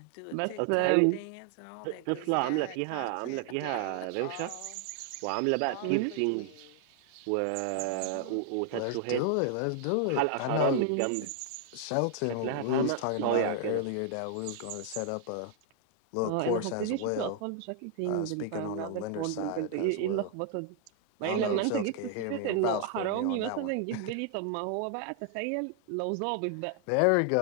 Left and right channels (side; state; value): both; different; correlation 0.00